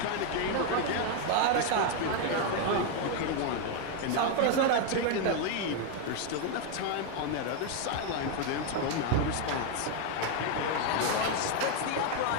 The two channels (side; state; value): both; different; correlation 0.01